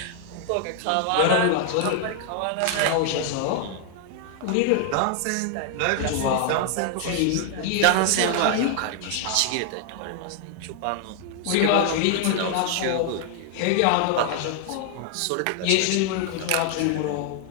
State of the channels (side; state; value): both; different; correlation 0.00